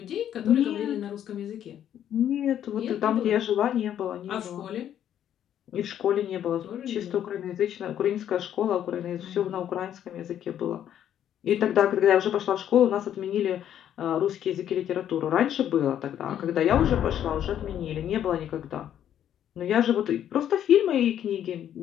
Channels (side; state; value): right; quieter; 10.3 dB